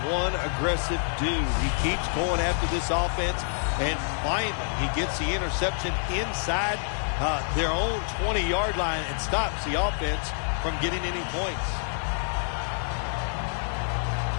one aggressive dude. He keeps going after this offense, and finally he gets the interception inside their own 20-yard line and stops the offense from getting any points.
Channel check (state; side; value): silent; right; digital silence